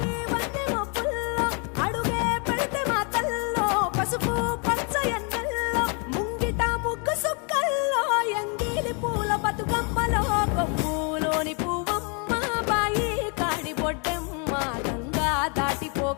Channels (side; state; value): right; quieter; 35.9 dB